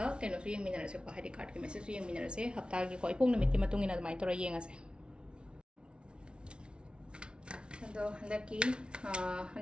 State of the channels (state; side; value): late; left; 0.057 ms